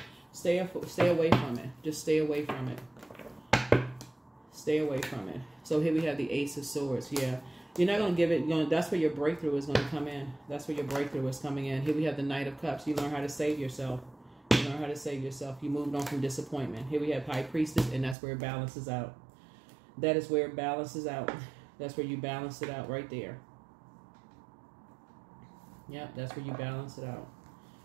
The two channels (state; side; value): drops out; left; at 18.2 s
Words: stay away from it. Just stay away from it. Stay away from it. So here we have the Ace of Swords. Yeah. You're not going to give it, that's where your breakthrough is going to come in. That's where your breakthrough is coming in. Here we have the Knight of Cups. You learn how to save yourself. You learn how to save yourself. You moved on from disappointment. Here we have High Priestess, and that's where it balances out. That is where it balances out. That's where you balance it out right there. Yep, that's where you balance it out.